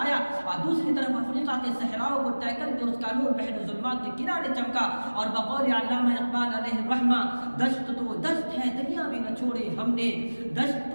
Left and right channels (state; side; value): inverted; both; correlation -1.00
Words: آیا، اور دوسری طرف افریقہ کے صحراؤں کو طے کر کے اس کا نور بحر ظلمات کے کنارے چمکا۔ اور بقول علامہ اقبال علیہ الرحمہ، دشت تو دست ہے دریا بھی نہ چھوڑے ہم نے، دشت